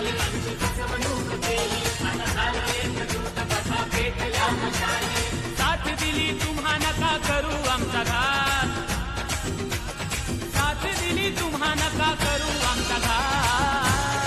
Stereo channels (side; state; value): both; identical; correlation 1.00